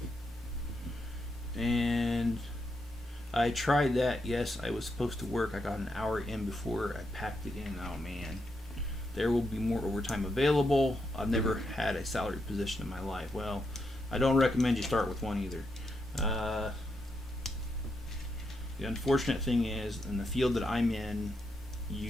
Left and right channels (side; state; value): both; normal; correlation 0.82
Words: And I tried that. Yes, I was supposed to work. I got an hour in before I packed it in. Oh man. There will be more overtime available. I've never had a salary position in my life. Well, I don't recommend you start with one either. The unfortunate thing is, in the field that I'm in,